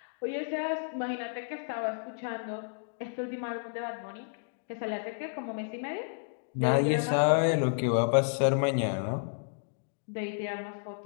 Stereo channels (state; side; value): silent; right; digital silence